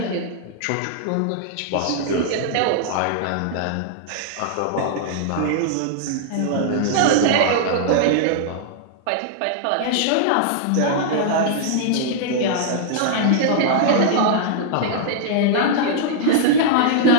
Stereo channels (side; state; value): both; different; correlation -0.01